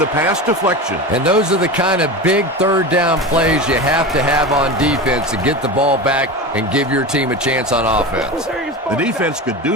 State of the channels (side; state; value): both; normal; correlation 0.26